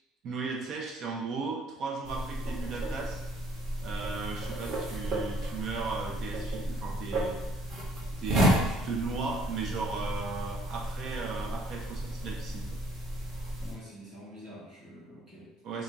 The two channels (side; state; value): both; normal; correlation 0.62